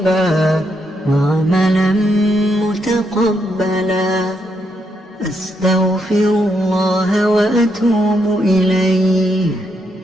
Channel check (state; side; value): normal; both; correlation 0.78